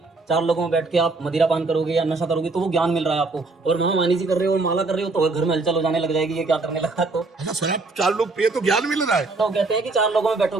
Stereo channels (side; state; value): left; quieter; 3.6 dB